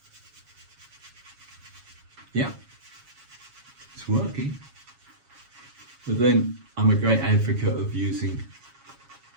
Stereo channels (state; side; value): late; left; 7.2 ms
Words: Yeah, it's working. But then I'm a great advocate of using